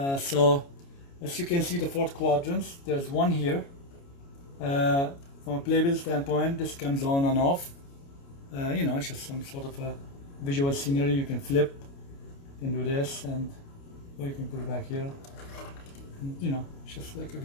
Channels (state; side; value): late; right; 29 ms